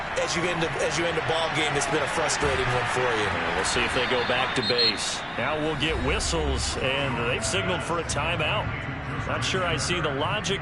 as you end a ball game that's been a frustrating one for you. We'll see if they go back to base. Now we'll get whistles, and they've signaled for a timeout. Not sure I see the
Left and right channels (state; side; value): identical; both; correlation 1.00